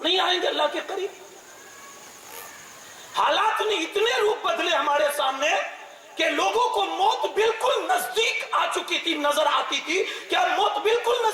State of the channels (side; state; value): both; identical; correlation 1.00